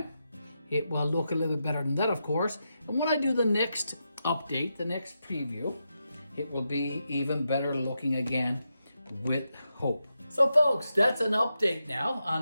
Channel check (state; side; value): inverted; both; correlation -0.86